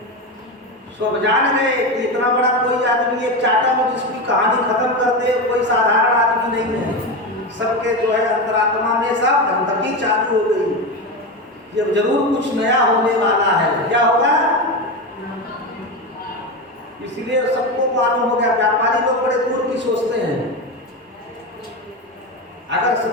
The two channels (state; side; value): normal; both; correlation 0.18